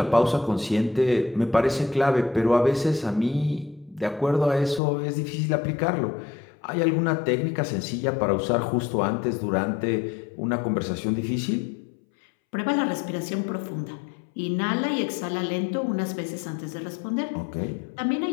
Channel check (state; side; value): drops out; right; at 4.8 s